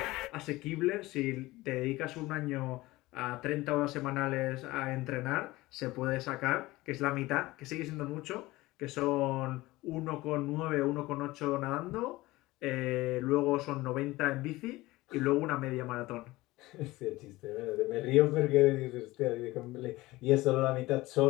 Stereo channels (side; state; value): right; quieter; 19.3 dB